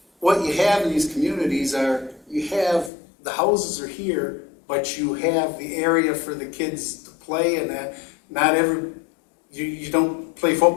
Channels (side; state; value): right; drops out; at 2.9 s